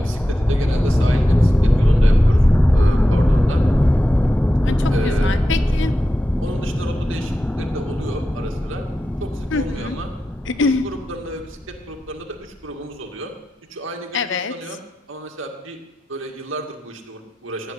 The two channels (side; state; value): both; normal; correlation 0.91